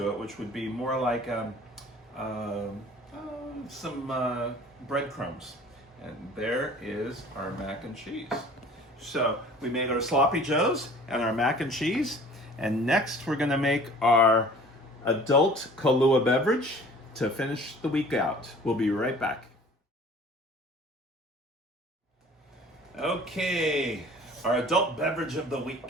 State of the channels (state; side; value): normal; both; correlation 0.48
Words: it, which would be more like some breadcrumbs. And there is our mac and cheese. So we made our sloppy joes and our mac and cheese. And next we're gonna make our adult Kahlua beverage to finish the week out. We'll be right back. Okay, our adult beverage of the